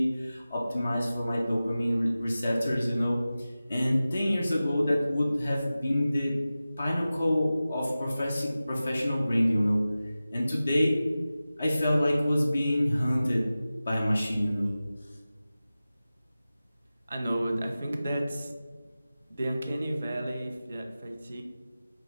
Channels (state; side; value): inverted; both; correlation -0.96